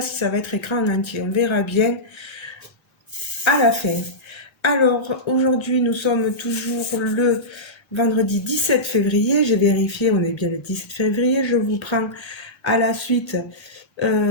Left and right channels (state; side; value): late; right; 1.3 ms